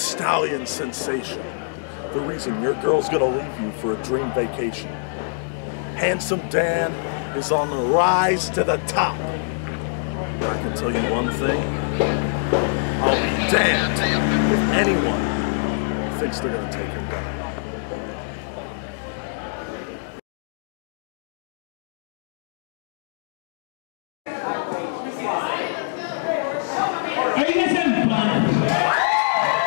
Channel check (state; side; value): silent; right; digital silence